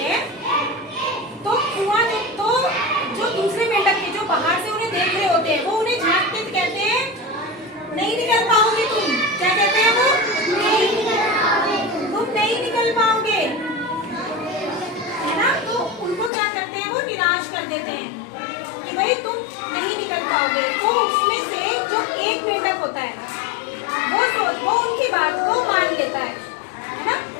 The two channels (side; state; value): right; drops out; at 16.3 s